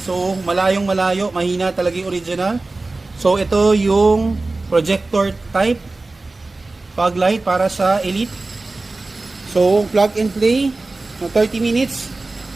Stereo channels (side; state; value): left; quieter; 3.3 dB